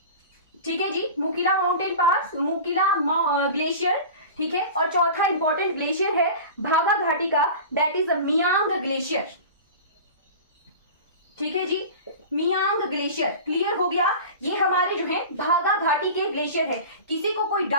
ठीक है जी, मुकीला माउंटेन पास, मुकीला ग्लेशियर। ठीक है, और चौथा इंपॉर्टेंट ग्लेशियर है भागा घाटी का, दैट इज मियांग ग्लेशियर। ठीक है जी, मियांग ग्लेशियर। क्लियर हो गया, ये हमारे जो है भागा घाटी के ग्लेशियर है। किसी को कोई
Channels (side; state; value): both; inverted; correlation -0.34